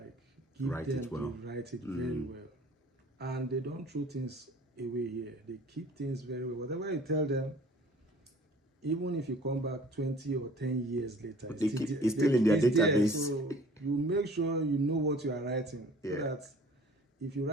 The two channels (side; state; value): both; normal; correlation 0.50